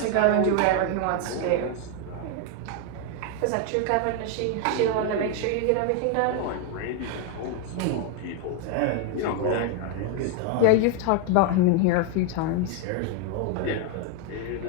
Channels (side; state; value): both; different; correlation 0.01